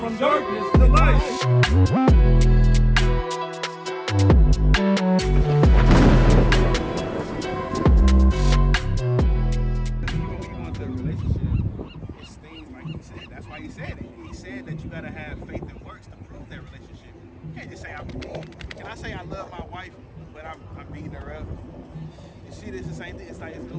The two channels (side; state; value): both; identical; correlation 1.00